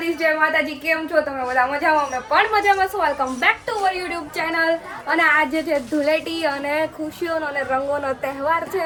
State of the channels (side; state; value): both; identical; correlation 1.00